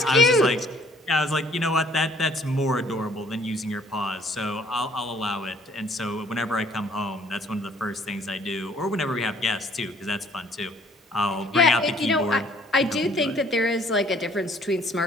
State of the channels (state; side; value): normal; both; correlation 0.59